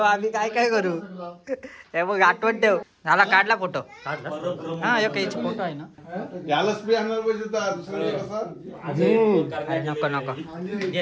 आम्ही काय करू हे बघ आठवण ठेव. झाला काढला फोटो. हा एक फोटो आहे ना. नको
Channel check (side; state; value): both; identical; correlation 1.00